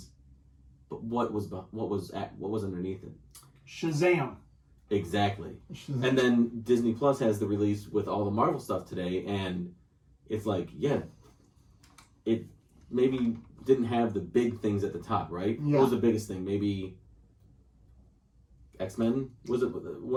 But what was underneath it? Shazam. Exactly. And then Disney Plus has the release with all the Marvel stuff today, and it's like, it maybe didn't have the big things at the top, right? Yeah. What was the biggest thing? Maybe X-Men? Was it one of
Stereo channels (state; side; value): identical; both; correlation 1.00